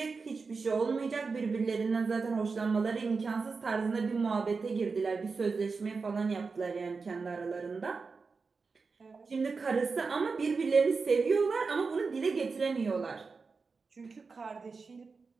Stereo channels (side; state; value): left; quieter; 4.6 dB